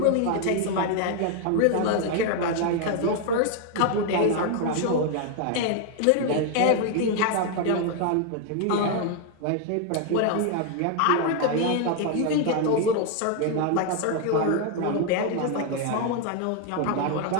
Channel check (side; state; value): both; different; correlation 0.01